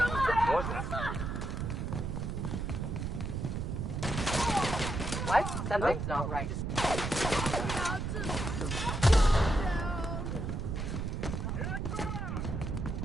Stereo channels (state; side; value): noise; right; rumble, 3 dB below the sound